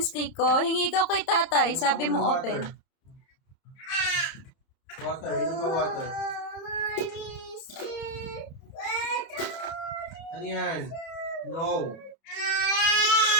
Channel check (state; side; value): late; right; 30 ms